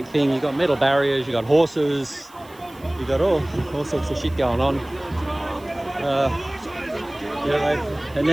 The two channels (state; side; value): noise; right; hiss, 26 dB below the sound